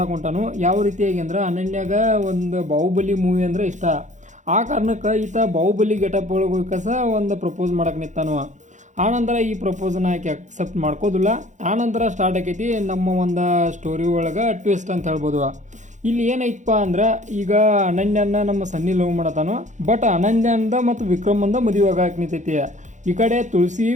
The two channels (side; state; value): left; late; 0.35 ms